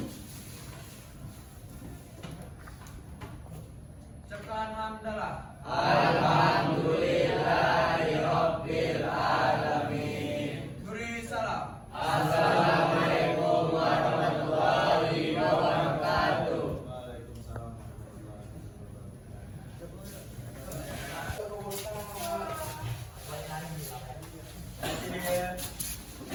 Ucapkan hamdalah. Alhamdulillahirabbil alamin. Beri salam. Assalamualaikum warahmatullahi wabarakatuh. Waalaikumsalam warahmatullahi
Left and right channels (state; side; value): identical; both; correlation 1.00